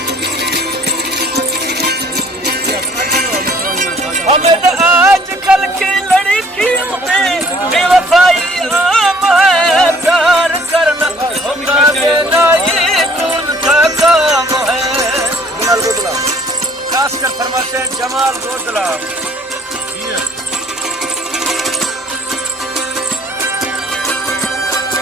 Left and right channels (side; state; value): both; normal; correlation 0.57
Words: हमें तो आजकल की लड़कियों में बेवफाई आम है, प्यार करना धोखा देना ये उनका काम है। खास कर फरमाइश है जमाल गोदला